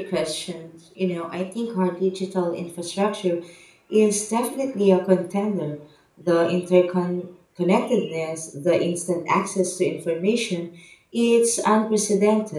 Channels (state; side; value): identical; both; correlation 1.00